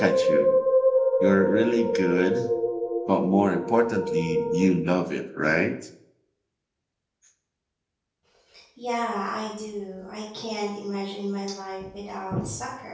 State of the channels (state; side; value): identical; both; correlation 1.00